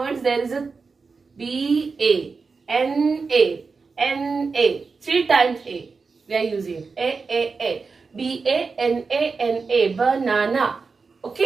words there is a BANA. 3 times A. We are using A. BANANA, banana.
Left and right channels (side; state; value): left; quieter; 4.6 dB